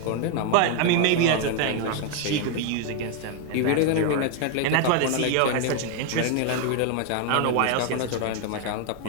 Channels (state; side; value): different; both; correlation 0.00